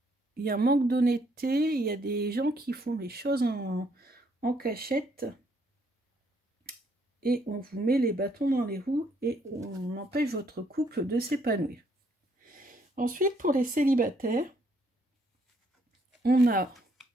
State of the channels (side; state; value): both; normal; correlation 0.69